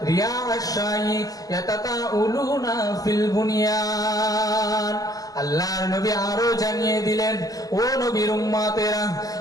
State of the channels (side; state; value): right; late; 0.18 ms